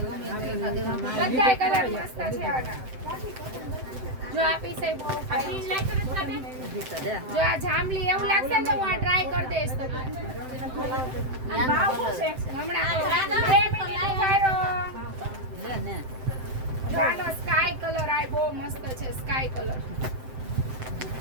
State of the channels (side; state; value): left; late; 7.7 ms